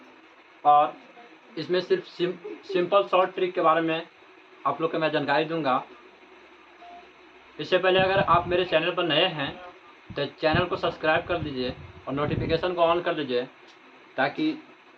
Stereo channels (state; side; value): identical; both; correlation 1.00